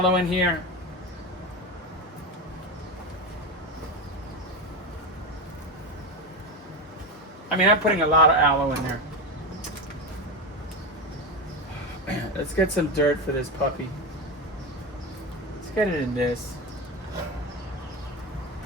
in here. I mean, I'm putting a lot of aloe in there. Let's get some dirt for this puppy. Let's get it in this.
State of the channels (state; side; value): normal; both; correlation 0.17